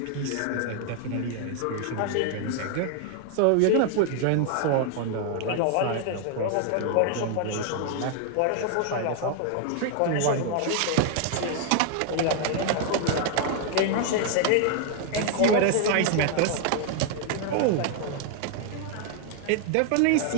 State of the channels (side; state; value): both; different; correlation 0.00